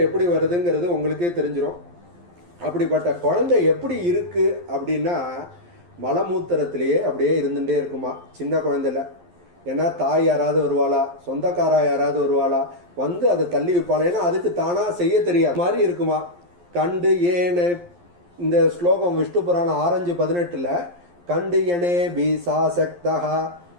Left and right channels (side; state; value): left; late; 11 ms